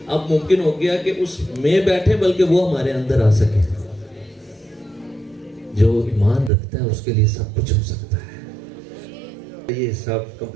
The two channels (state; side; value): drops out; left; at 6.5 s